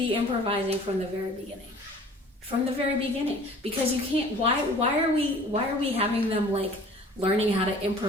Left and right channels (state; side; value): normal; both; correlation 0.48